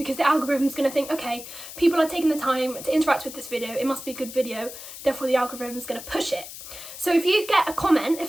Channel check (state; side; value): noise; left; hiss, 12 dB below the sound